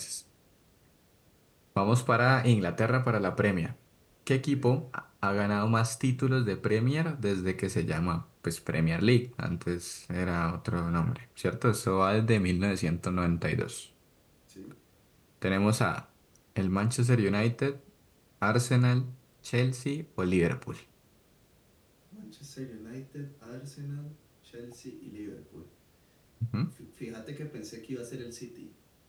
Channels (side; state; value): both; identical; correlation 1.00